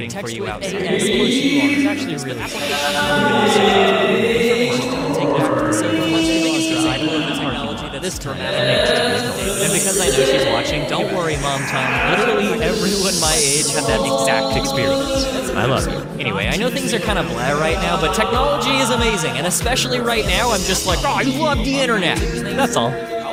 for you outside. And of course you are. It's actually really this dramatic and because I know she's watching, don't worry, Mom Tom. Literally everyone my age had that exact experience. I love you. Anyway, I know things are kind of blah right now, but technology is amazing, and especially right now, I'm just like, oh, I love the internet. That's all.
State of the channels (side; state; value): both; identical; correlation 1.00